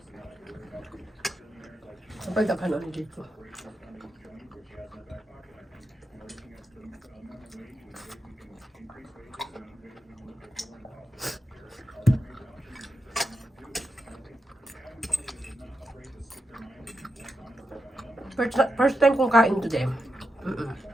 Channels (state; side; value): normal; both; correlation 0.87